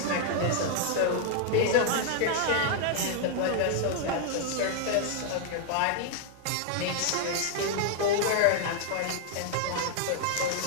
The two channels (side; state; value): both; different; correlation 0.00